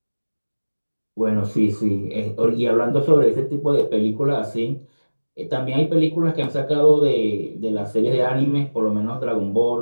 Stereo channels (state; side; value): inverted; both; correlation -1.00